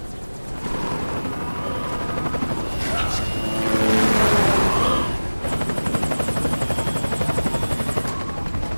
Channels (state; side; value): inverted; both; correlation -1.00